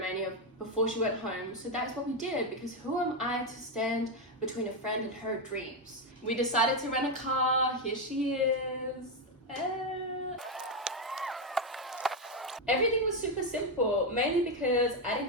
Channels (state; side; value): normal; both; correlation 0.06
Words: before she went home, so that's what we did, because who am I to stand between a friend and her dreams? We decided to rent a car. Here she is. Everything was super simple, mainly because I